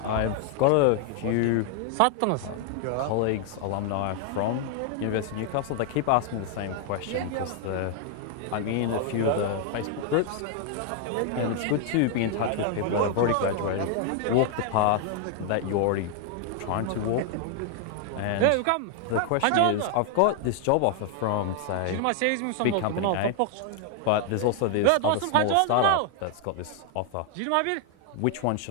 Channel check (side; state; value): both; different; correlation 0.00